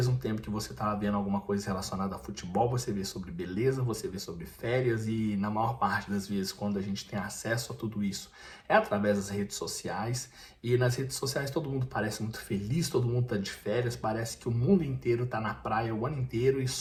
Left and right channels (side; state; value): both; identical; correlation 1.00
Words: tempo que você está vendo alguma coisa relacionada a futebol, você vê sobre beleza, você vê sobre férias e na maior parte das vezes quando a gente tem acesso a tudo isso é através das redes sociais e nas redes sociais todo mundo parece muito feliz, todo mundo está de férias, parece que o mundo inteiro está na praia o ano inteiro e